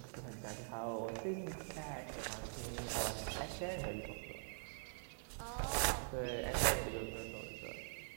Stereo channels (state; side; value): silent; left; digital silence